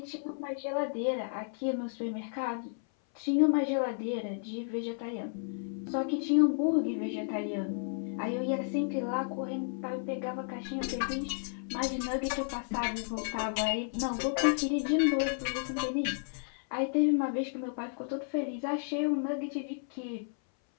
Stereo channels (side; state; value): right; silent; 56 dB below the other